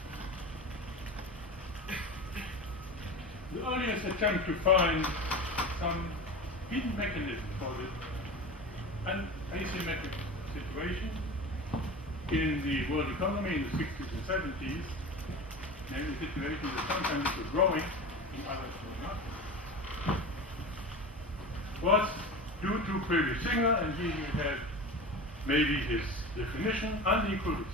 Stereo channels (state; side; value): normal; both; correlation 0.30